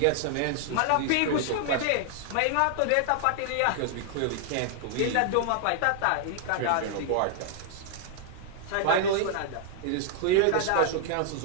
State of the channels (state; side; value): different; both; correlation 0.00